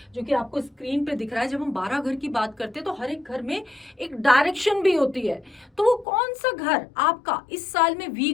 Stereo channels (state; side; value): drops out; right; at 6.1 s